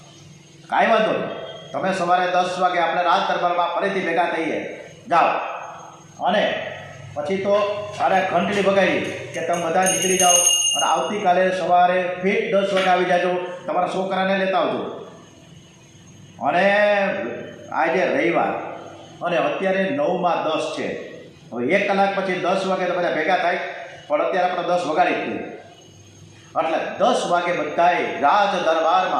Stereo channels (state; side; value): identical; both; correlation 1.00